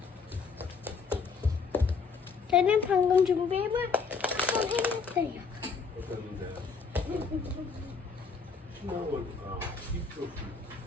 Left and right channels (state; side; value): quieter; right; 5.1 dB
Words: 저는 방금 준비해볼 한번 해놨어요.